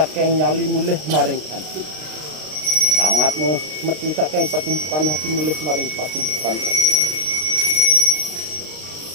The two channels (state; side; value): late; left; 32 ms